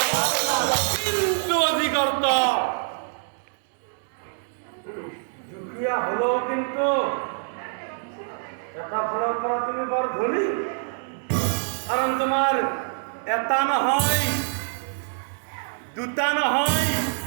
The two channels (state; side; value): silent; left; 61 dB below the other